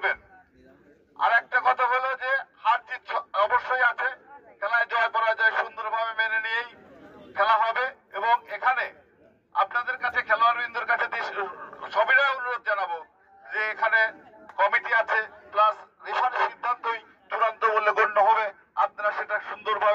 আর একটা কথা হলো যে হার জিত অবশ্যই আছে, খেলায় জয় পরাজয় সুন্দরভাবে মেনে নিয়েই খেলা হবে। এবং এখানে আপনাদের কাছে খেলোয়াড়বৃন্দের কাছে সবিনয় অনুরোধ জানাবো যে এখানে কমিটি আছে, প্লাস রেফারি সিদ্ধান্তই চূড়ান্ত বলে গণ্য হবে। আপনারা সেটা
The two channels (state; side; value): identical; both; correlation 1.00